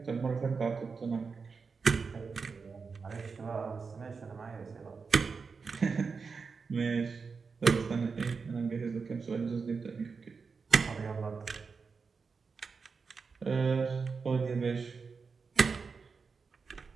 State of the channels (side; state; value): left; quieter; 5.1 dB